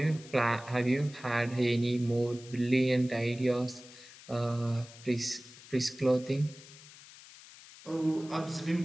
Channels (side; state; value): left; noise; hiss, 19 dB below the sound